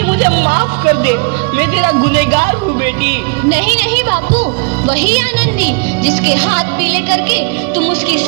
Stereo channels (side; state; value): left; quieter; 32.7 dB